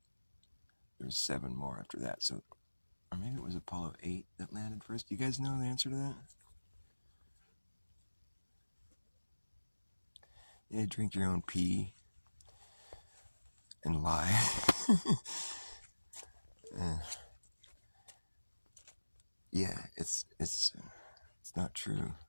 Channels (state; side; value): inverted; both; correlation -1.00